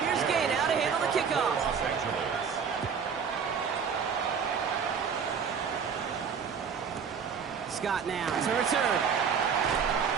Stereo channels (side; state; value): left; quieter; 6.6 dB